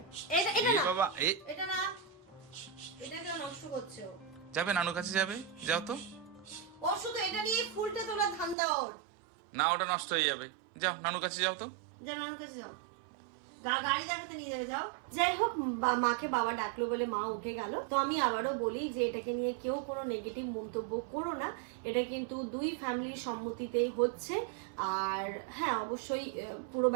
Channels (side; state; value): left; drops out; at 8.6 s